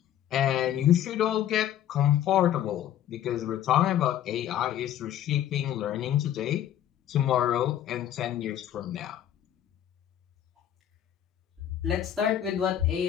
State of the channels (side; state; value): right; quieter; 11.1 dB